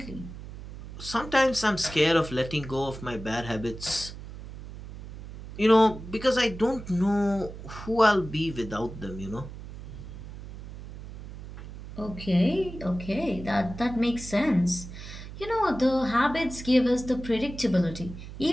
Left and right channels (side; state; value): right; noise; hum, 12 dB below the sound